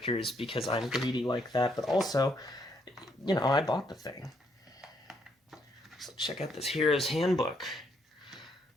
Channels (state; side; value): normal; both; correlation 0.73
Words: because I'm greedy like that, but also, you know, I bought the thing. So check out this Hero's Handbook.